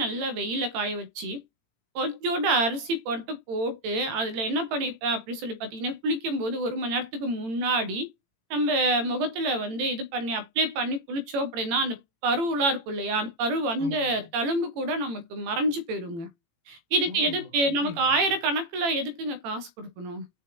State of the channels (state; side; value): late; left; 18 ms